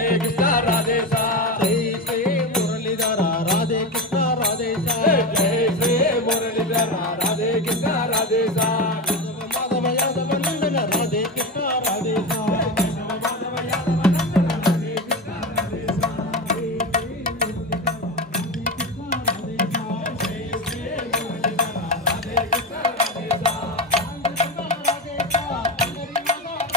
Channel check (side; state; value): both; normal; correlation 0.20